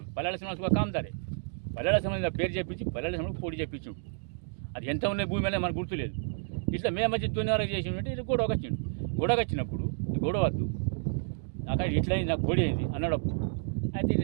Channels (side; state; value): left; silent; digital silence